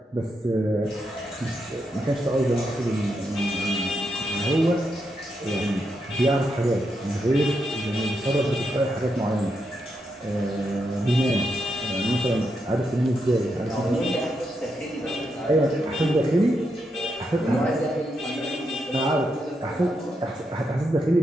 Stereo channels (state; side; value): normal; both; correlation 0.82